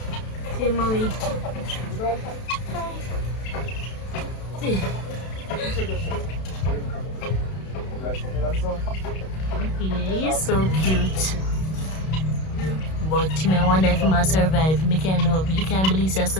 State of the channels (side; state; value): right; late; 32 ms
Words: See mommy. Yeah, he's so cute. But I wonder if he might survive. I can't know. You can't believe that so